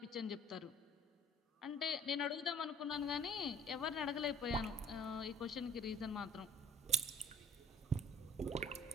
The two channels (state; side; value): normal; both; correlation 0.50